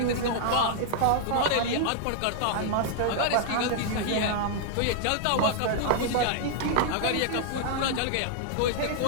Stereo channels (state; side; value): different; both; correlation -0.01